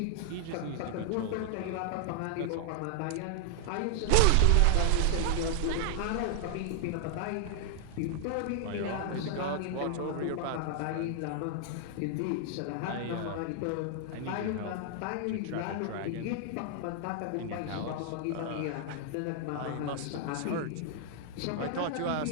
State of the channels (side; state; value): both; different; correlation 0.00